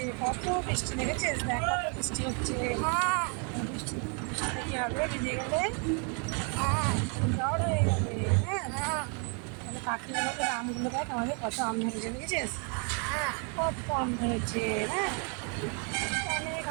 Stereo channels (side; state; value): left; quieter; 37.5 dB